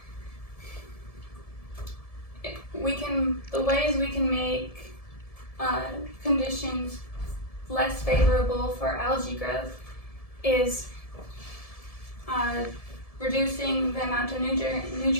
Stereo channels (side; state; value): right; late; 1.7 ms